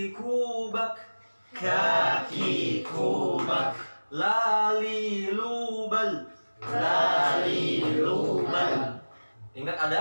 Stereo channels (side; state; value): both; inverted; correlation -1.00